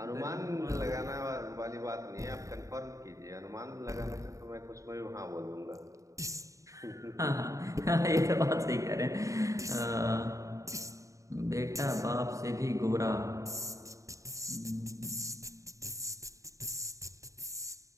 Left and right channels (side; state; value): left; late; 0.16 ms